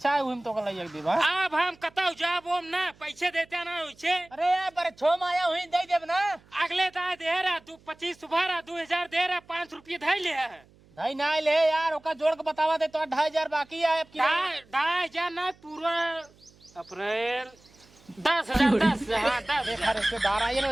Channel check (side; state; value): right; noise; hum, 28 dB below the sound